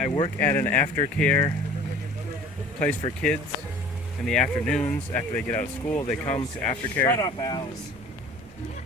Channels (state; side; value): normal; both; correlation 0.46